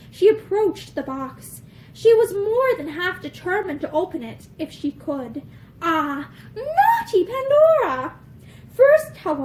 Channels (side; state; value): both; identical; correlation 1.00